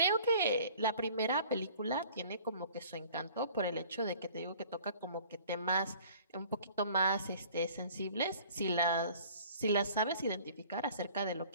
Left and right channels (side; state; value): both; inverted; correlation -0.50